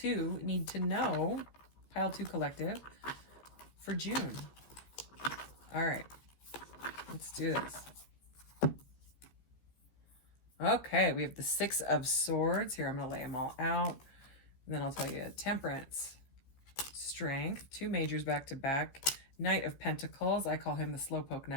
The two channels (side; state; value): right; late; 15 ms